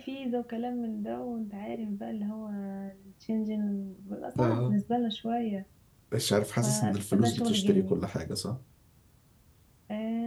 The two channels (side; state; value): both; identical; correlation 1.00